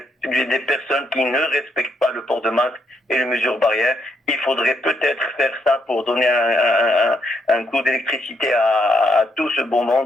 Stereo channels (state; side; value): normal; both; correlation 0.76